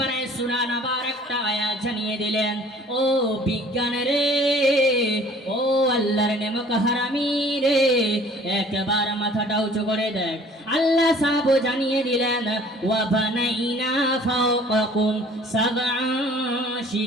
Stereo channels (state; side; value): normal; both; correlation 0.52